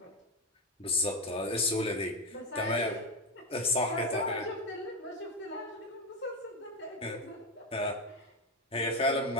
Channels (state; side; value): normal; both; correlation 0.12